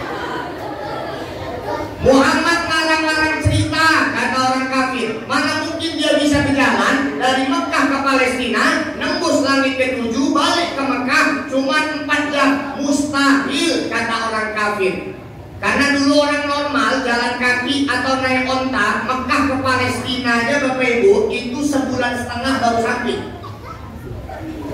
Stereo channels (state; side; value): identical; both; correlation 1.00